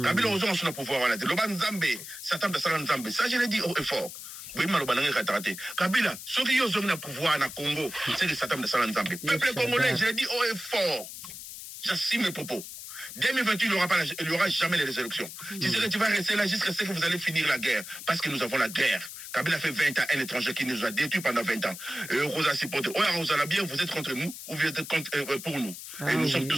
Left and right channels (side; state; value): left; noise; hiss, 11 dB below the sound